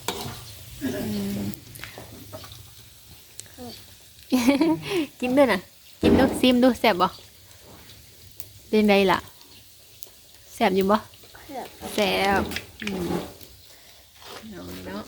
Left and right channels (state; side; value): identical; both; correlation 1.00